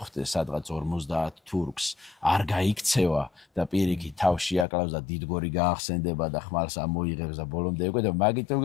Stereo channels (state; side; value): drops out; right; at 4.7 s